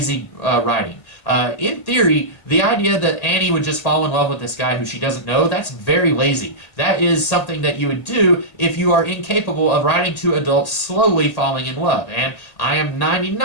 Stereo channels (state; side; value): late; right; 1.8 ms